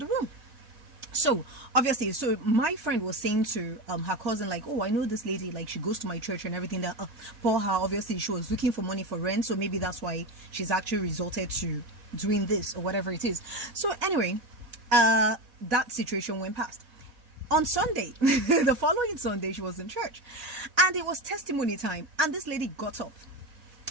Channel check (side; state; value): left; late; 4.1 ms